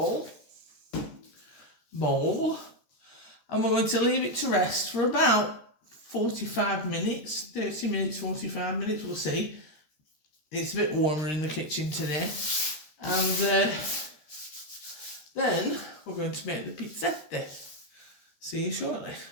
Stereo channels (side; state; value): right; late; 13 ms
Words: and we're going to leave it to rest for about 45 minutes, 30 minutes, 45 minutes, we'll see. It's a bit warmer in the kitchen today. And then we're going to make the pizzette. See you shortly.